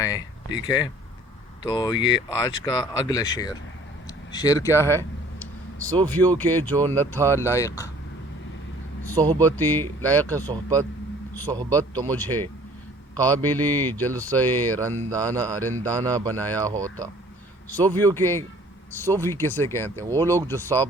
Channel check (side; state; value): both; normal; correlation 0.53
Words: ٹھیک ہے؟ تو یہ آج کا اگلا شعر کیا ہے؟ صوفیوں کے جو نہ تھا لائق صحبتی، لائق صحبت تو مجھے قابلی جلسہ رندانہ بنایا ہوتا۔ صوفی کسے کہتے ہیں؟ وہ لوگ جو صاف